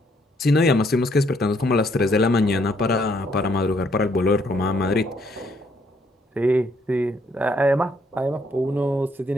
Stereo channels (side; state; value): both; normal; correlation 0.70